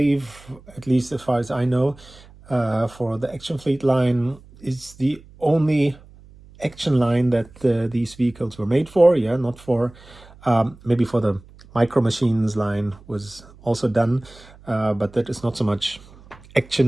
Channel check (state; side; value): noise; right; hum, 23 dB below the sound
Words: at least as far as I know, for the Action Fleet line is the only action line that these vehicles were made for. Yeah, not for maybe for the Micro Machines line was also done, but that is not so much